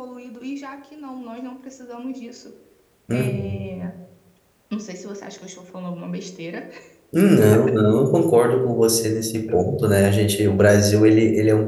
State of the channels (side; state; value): both; identical; correlation 1.00